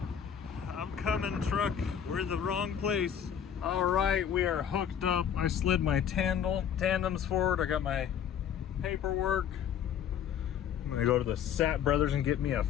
I'm coming, truck. We're in the wrong place. All right, we are hooked up. I slid my tandems forward. I got my paperwork. I'm gonna go to the Sat Brothers and get me a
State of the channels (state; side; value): quieter; right; 8.7 dB